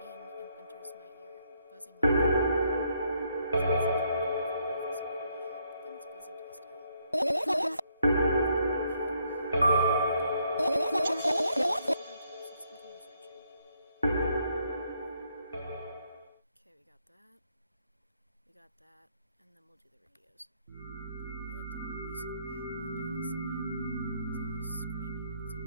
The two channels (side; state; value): both; inverted; correlation -0.72